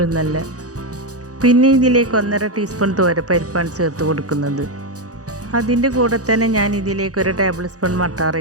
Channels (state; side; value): late; left; 0.67 ms